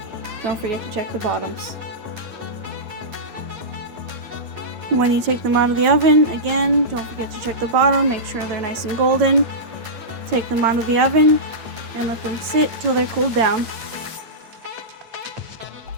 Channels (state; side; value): late; left; 8.7 ms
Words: Don't forget to check the bottoms. When you take them out of the oven, again, don't forget to check the bottom, make sure they're nice and golden. Take them out of the oven and let them sit till they're cooled down.